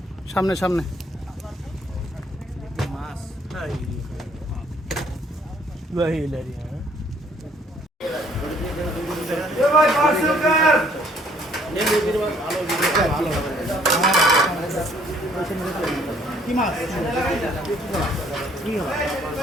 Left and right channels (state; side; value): normal; both; correlation 0.61